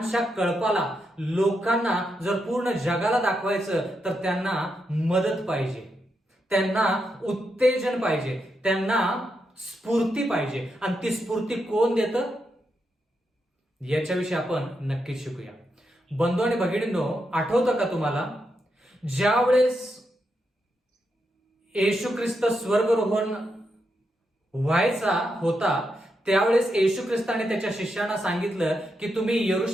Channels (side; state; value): both; normal; correlation 0.84